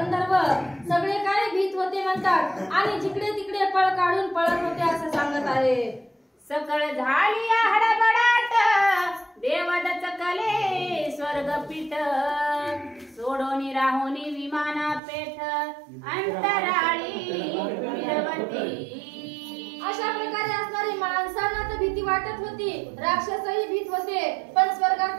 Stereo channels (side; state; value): left; drops out; at 15.0 s